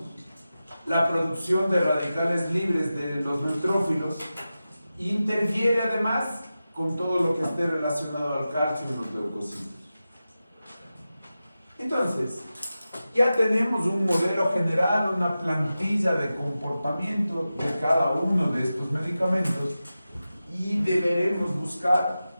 la producción de radicales libres de los neutrófilos, e interfiere además con todo lo que esté relacionado al calcio en los leucocitos. Entonces, ya tenemos un modelo general, una plantilla de comportamiento de cada uno de estos medicamentos, y deberemos buscar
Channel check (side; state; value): both; inverted; correlation -0.93